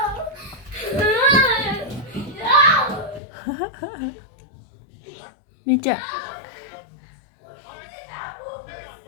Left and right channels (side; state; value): right; drops out; at 3.2 s